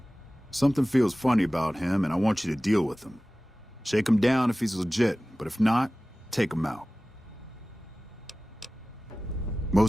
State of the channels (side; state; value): both; normal; correlation 0.97